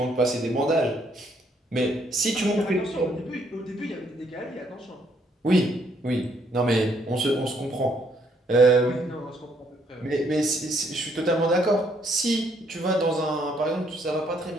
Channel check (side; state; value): both; normal; correlation 0.69